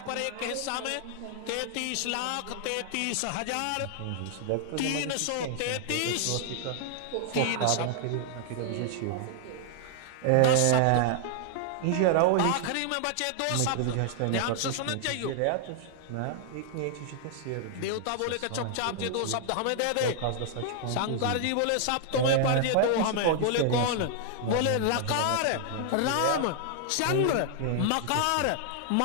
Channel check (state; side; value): different; both; correlation 0.00